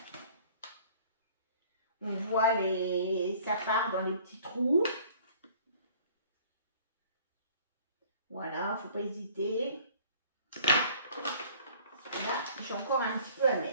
On voit ça part dans les petits trous. Voilà, faut pas hésiter. Là, j'ai encore un petit peu à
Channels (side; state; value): both; inverted; correlation -0.52